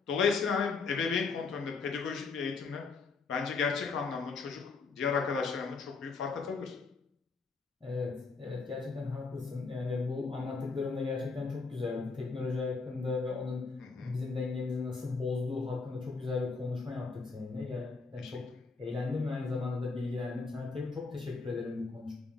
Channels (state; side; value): quieter; right; 4.5 dB